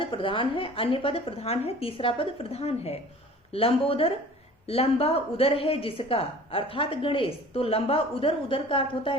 प्रधान है, अन्य पद प्रधान है, तीसरा पद प्रधान है। लंबोदर, लंबा उदर है जिसका, अर्थात गणेश। तो लंबा उदर, उदर का अर्थ होता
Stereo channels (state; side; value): normal; both; correlation 0.45